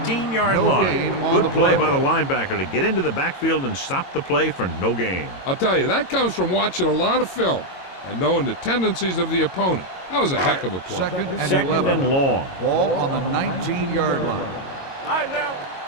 line. Good play by the linebacker to get into the backfield and stop the play for no gain. I'll tell you, that comes from watching a lot of film and knowing the tendencies of the opponent. That was a heck of a play. Second and long. Ball on the 19-yard line. All right, now.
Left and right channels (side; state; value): right; late; 22 ms